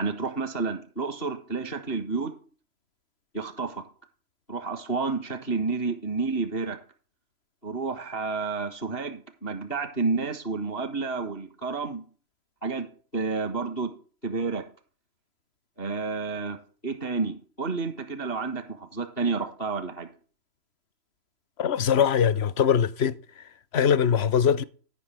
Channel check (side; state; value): right; late; 3.0 ms